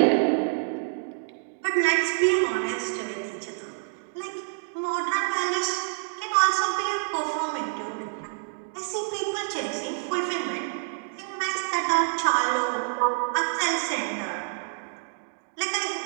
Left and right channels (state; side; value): silent; left; digital silence